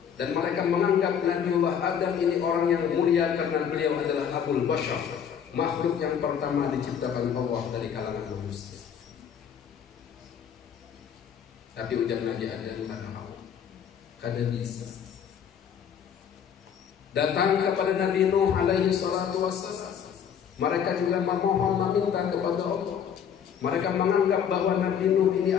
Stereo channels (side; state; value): right; quieter; 8.1 dB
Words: Dan mereka menganggap Nabiullah Adam ini orang yang mulia karena beliau adalah Abul Bashar, makhluk yang pertama diciptakan Allah dari kalangan manusia. Tapi ujar Nabi Adam, kada bisa. Datang kepada Nabi Nuh alaihi salatu wassalam. Mereka juga memohon, meminta kepada Allah. Mereka menganggap bahwa Nabi Nuh ini